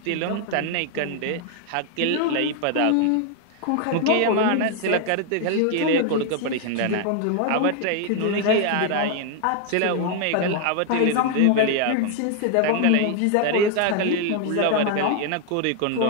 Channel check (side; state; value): both; different; correlation 0.00